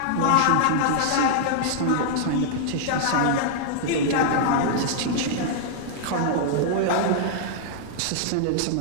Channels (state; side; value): different; both; correlation -0.01